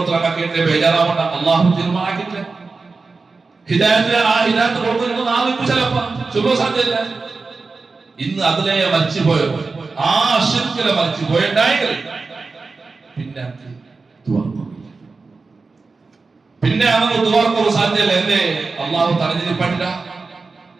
ബേജാറാവണ്ട. അള്ളാഹു തീരുമാനാക്കിയിട്ടില്ല. ഹിദായത്ത് കൊടുക്കുന്നത് നാളെ ചിലപ്പോ ചൊല്ലോ സാധ്യല്ല. ഇന്ന് അതിലെ മരിച്ചുപോയോ, ആ ശിർക്കിലെ മരിച്ചുപോയുണ്ടായെങ്കിൽ പിന്നെ അവന് ദുആർക്കോ സാധ്യല്ല. എന്തേ? അള്ളാഹു തടഞ്ഞിരിപ്പറ്റില്ല.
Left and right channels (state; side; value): quieter; left; 4.1 dB